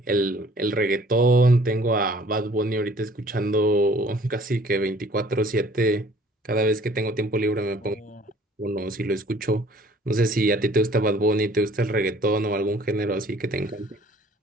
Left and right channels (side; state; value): both; normal; correlation 0.54